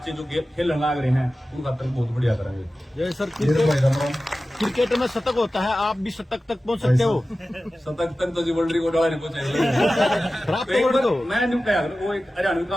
जो खेलने लग रहे हैं उन खातर बहुत बढ़िया करेंगे। जय सर, क्रिकेट में शतक होता है, आप भी शतक तक पहुंच सकते हो। शतक तक तो जी वर्ल्ड रिकॉर्ड वाले नहीं पहुंचे। मैं नहीं कहा वो एक हरियाणवी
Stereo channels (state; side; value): normal; both; correlation 0.95